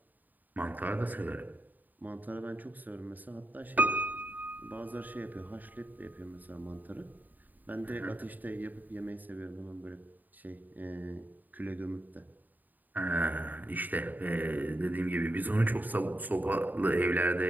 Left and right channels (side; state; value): left; late; 0.086 ms